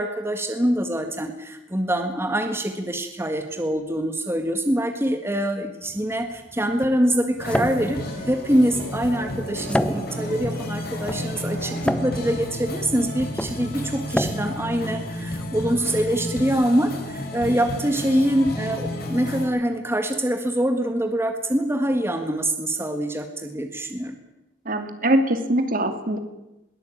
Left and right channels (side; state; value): both; normal; correlation 0.78